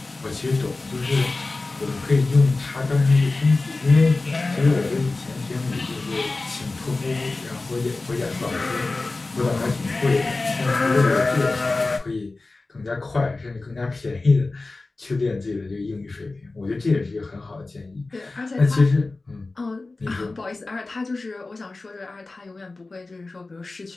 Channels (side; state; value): right; quieter; 3.4 dB